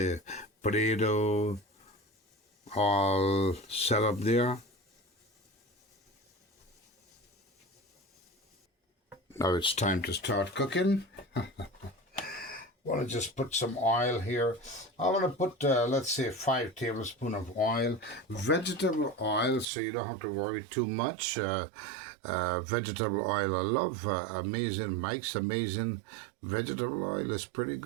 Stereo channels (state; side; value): drops out; left; at 19.7 s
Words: potato, all set up there. Now it's time to start cooking. Want to just put some oil here. I want to put, let's say, 5 tablespoons of oil. Vegetable oil, so you don't have to worry too much. Vegetable oil, I love Amazing. Mike's Amazing vegetable oil is pretty